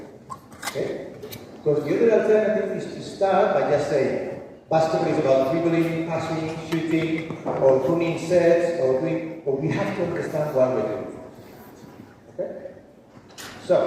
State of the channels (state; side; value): identical; both; correlation 1.00